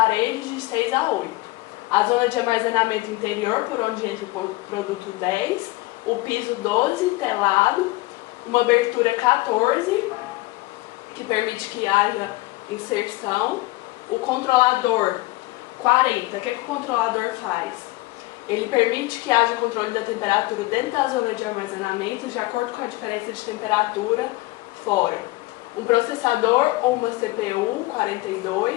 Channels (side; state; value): right; quieter; 20.7 dB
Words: de 6 a 8. A zona de armazenamento interior, por onde entra o produto 10, o piso 12, telado, uma abertura 14, que permite que haja inserção, o controlador 40. O que o controlador faz? Ele permite que haja controle da temperatura dentro da zona de armazenamento, de acordo com a diferença de temperatura fora. Um processador ou uma CPU